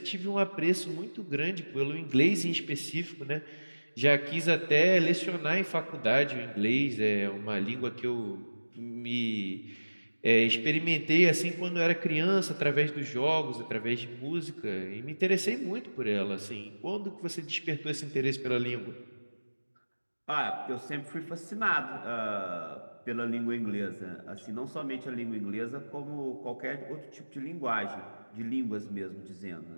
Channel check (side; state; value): both; inverted; correlation -1.00